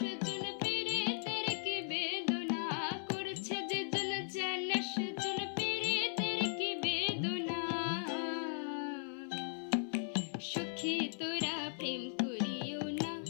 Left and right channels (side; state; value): right; silent; 53 dB below the other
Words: পীড়িতের কি বেদনা। করছে যে জন জানে সেজন পীড়িতের কি বেদনা। সখী তোরা প্রেম করিও না,